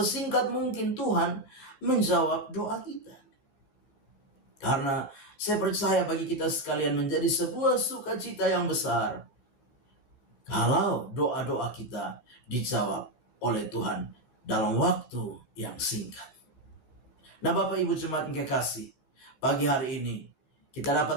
mungkin Tuhan menjawab doa kita. Karena saya percaya bagi kita sekalian menjadi sebuah sukacita yang besar kalau doa-doa kita dijawab oleh Tuhan dalam waktu yang singkat. Nah, Bapak Ibu jemaat yang kekasih, pagi hari ini kita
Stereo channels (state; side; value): late; right; 14 ms